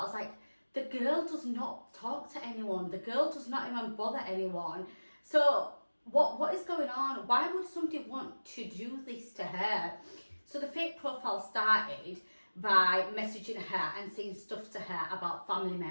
Like, the girl does not talk to anyone. The girl does not even bother anyone. So what is going on? Why would somebody want to do this to her? So the fake profile started by messaging her and saying stuff to her about family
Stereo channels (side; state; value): both; inverted; correlation -1.00